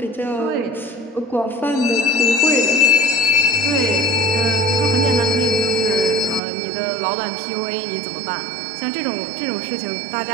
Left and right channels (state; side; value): drops out; left; at 6.4 s